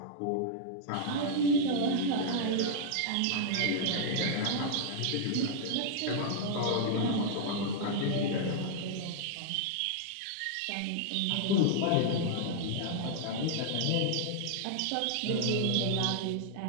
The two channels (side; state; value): both; different; correlation -0.01